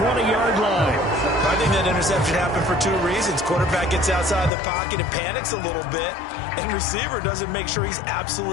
line. I think that interception happened for two reasons. Quarterback gets outside the pocket and panics a little bit, and receiver doesn't make sure he's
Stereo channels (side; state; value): right; drops out; at 4.5 s